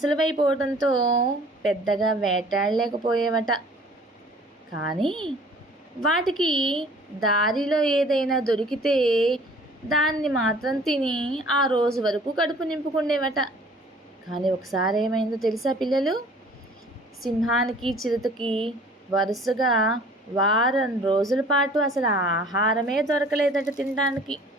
పెద్దగా వేటాడలేకపోయేవట. కానీ వాటికి దారిలో ఏదైనా దొరికితే దాన్ని మాత్రం తిని ఆ రోజు వరకు కడుపు నింపుకుండేవట. కానీ ఒకసారి ఏమైందో తెలుసా పిల్లలు? సింహానికి చిరుతకి వరుసగా వారం రోజుల పాటు అసలు ఆహారమే దొరకలేదట తినడానికి.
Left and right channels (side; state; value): both; normal; correlation 0.51